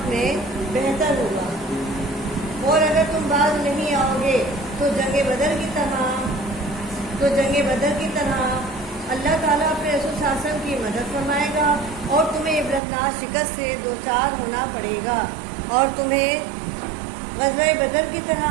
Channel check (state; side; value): drops out; left; at 12.8 s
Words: اور اگر تم باز نہیں آؤ گے تو جنگ بدر کی طرح اللہ تعالیٰ اپنے رسول صلی اللہ علیہ وسلم کی مدد فرمائے گا اور تمہیں عبرتناک شکست سے دوچار ہونا پڑے گا، اور تمہیں غزوہ بدر کی طرح